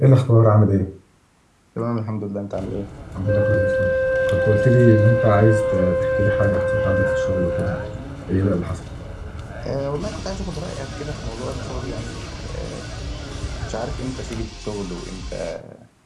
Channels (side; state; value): both; identical; correlation 1.00